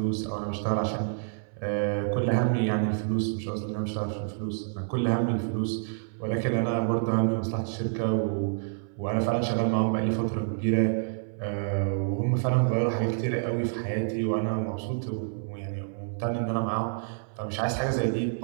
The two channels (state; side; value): silent; left; 59 dB below the other